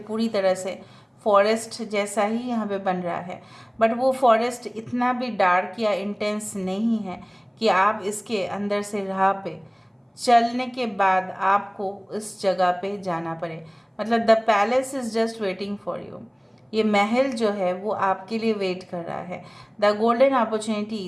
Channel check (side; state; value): both; identical; correlation 1.00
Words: तरह से फॉरेस्ट जैसा ही यहाँ पे बन रहा है, बट वो फॉरेस्ट इतना भी डार्क या इंटेंस नहीं है कि आप इसके अंदर से राह पे चलने के बाद आपको इस जगह पे जाना पड़े। मतलब the palace is just waiting for you. ये महल जो है वो आपके लिए वेट कर रहा है। The golden